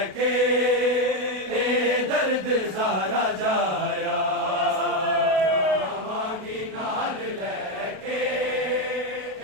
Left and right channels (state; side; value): late; left; 32 ms